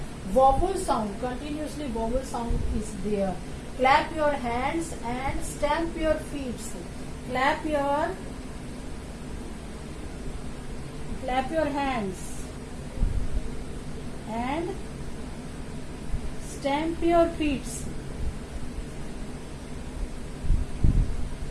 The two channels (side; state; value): both; identical; correlation 1.00